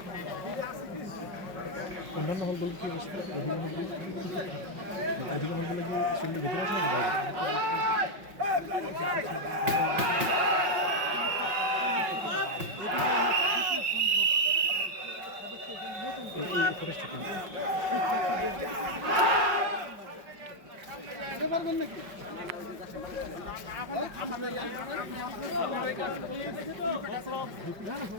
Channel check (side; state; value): left; late; 5.5 ms